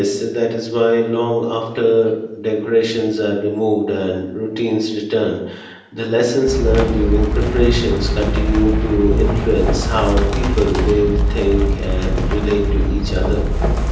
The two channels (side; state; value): both; identical; correlation 1.00